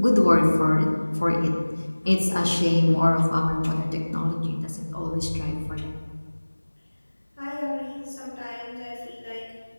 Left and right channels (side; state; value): both; inverted; correlation -1.00